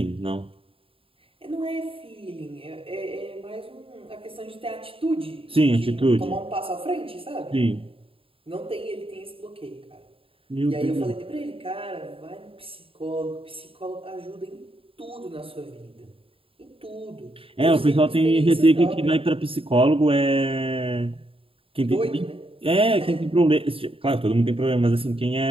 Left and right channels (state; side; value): late; left; 0.27 ms